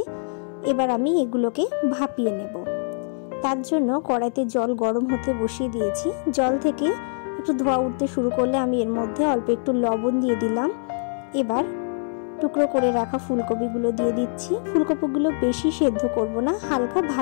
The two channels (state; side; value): silent; right; digital silence